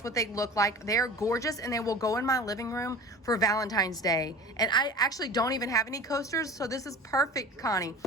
what they look like. They're gorgeous and they will go in my living room for Valentine's Day. And I actually don't even have any coasters, so this is perfect, Connie.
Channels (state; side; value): normal; both; correlation 0.38